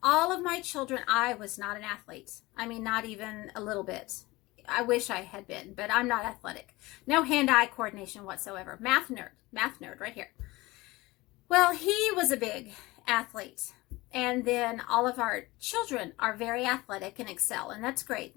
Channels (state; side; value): quieter; right; 21.0 dB